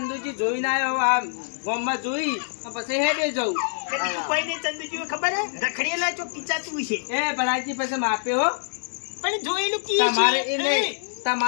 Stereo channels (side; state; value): right; silent; digital silence